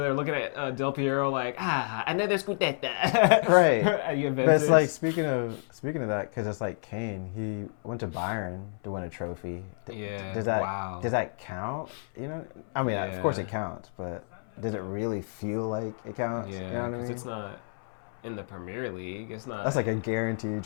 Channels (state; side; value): silent; right; 58 dB below the other